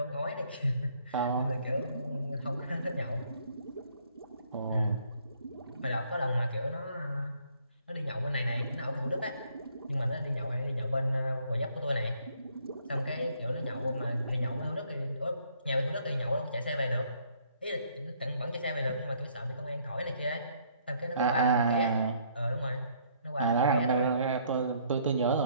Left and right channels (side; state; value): both; inverted; correlation -0.65